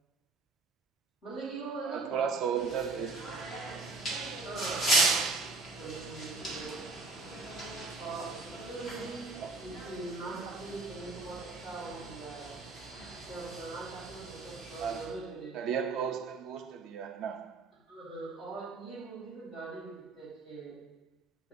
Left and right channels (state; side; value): quieter; left; 3.6 dB